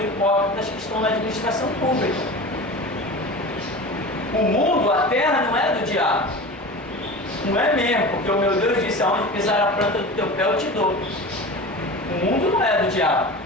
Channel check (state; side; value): normal; both; correlation 0.33